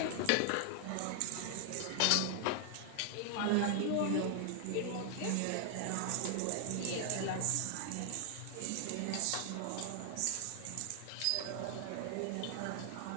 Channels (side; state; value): both; different; correlation 0.00